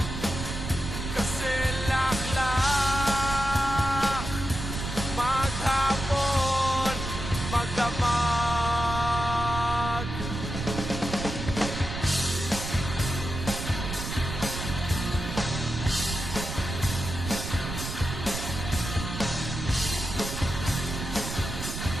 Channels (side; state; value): right; noise; rumble, 6 dB below the sound